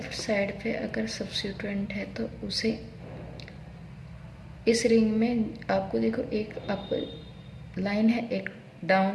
साइड पे अगर सब्स्टिट्यूएंट है तो उसे इस रिंग में आपको देखो एक अप लाइन है, एक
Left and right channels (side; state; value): both; identical; correlation 1.00